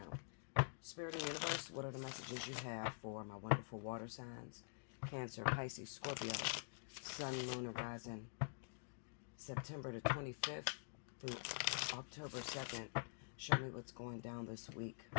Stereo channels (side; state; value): right; silent; digital silence